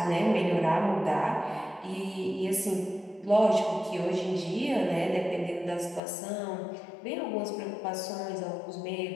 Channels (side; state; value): right; drops out; at 6.0 s